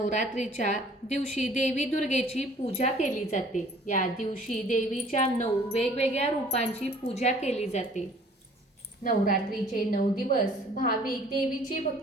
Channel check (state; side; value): normal; both; correlation 0.54